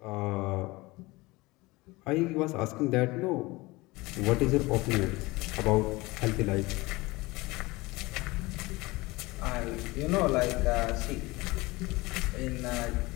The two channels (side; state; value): right; quieter; 22.0 dB